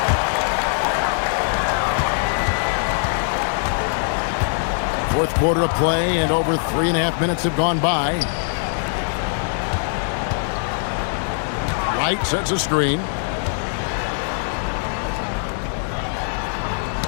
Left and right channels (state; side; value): silent; right; digital silence